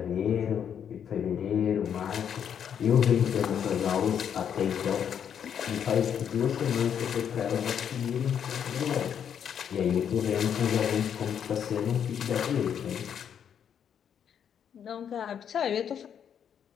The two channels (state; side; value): quieter; right; 8.4 dB